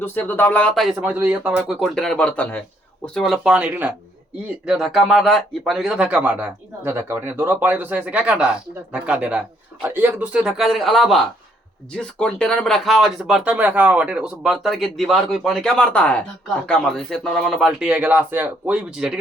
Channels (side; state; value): both; normal; correlation 0.68